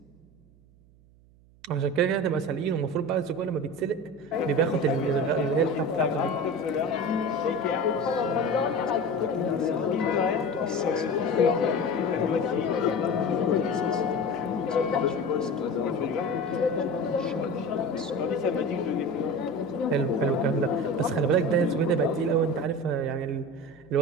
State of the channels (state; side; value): noise; right; hum, 27 dB below the sound